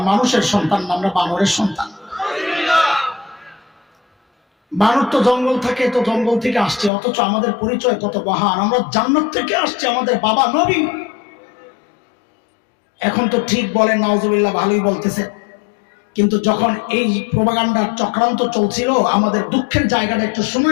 মানুষের সন্তান না, আমরা বানরের সন্তান। বানর তো জঙ্গল থাকে, তো জঙ্গল থেকে আসছে, অথচ আমাদের পরিচয় কত মহান, আমরা জান্নাত থেকে আসছে, আমাদের বাবা নবী। এখন তো ঠিক বলেন নাউজুবিল্লাহ, ভালোই বলতেছে, কিন্তু যখন এই প্রোপাগান্ডার চক্রান্ত চলছিল আমাদের দুঃখের জায়গাটা একটু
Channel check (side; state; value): right; drops out; at 6.9 s